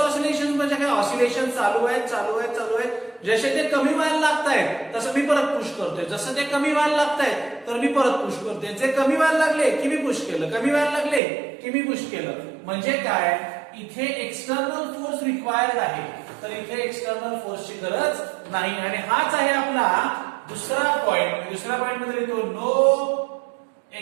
ऑसिलेशन म्हणजे काय? ऑसिलेशन चालू आहे, चालू आहे, चालू आहे. जसे ते कमी व्हायला लागतायत तसं मी परत पुश करतोय. जसं ते कमी व्हायला लागतायत तर मी परत पुश करतोय. जे कमी व्हायला लागले की मी पुश केलं, कमी व्हायला लागले की मी पुश केलं. म्हणजे काय? इथे एक्सटर्नल फोर्स रिक्वायर्ड आहे, तर इथे एक्सटर्नल फोर्सची गरज नाही. आणि हाच आहे आपला दुसरा पॉइंट. दुसऱ्या पॉइंट मध्ये लिहितो no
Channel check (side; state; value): left; drops out; at 11.2 s